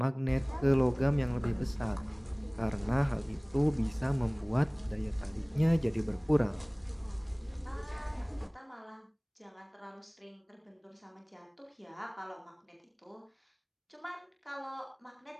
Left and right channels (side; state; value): both; identical; correlation 1.00